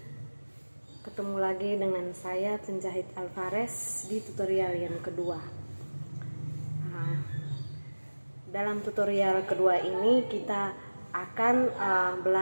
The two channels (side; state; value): both; inverted; correlation -1.00